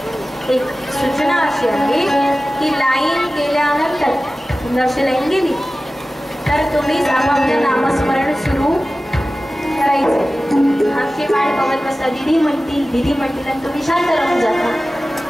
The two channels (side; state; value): both; normal; correlation 0.96